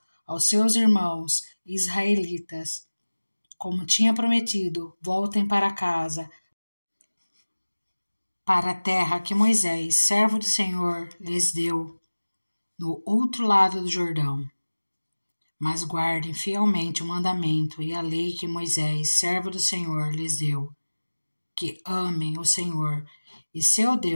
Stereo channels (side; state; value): both; inverted; correlation -1.00